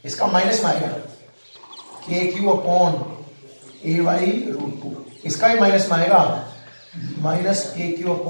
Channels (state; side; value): inverted; both; correlation -1.00